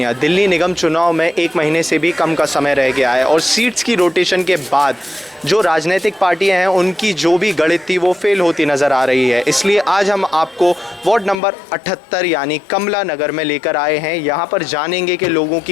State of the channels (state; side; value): drops out; right; at 11.4 s